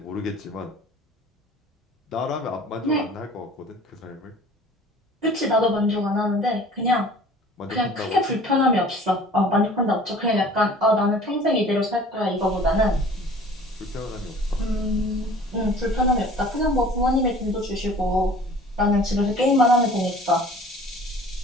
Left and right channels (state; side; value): normal; both; correlation 0.47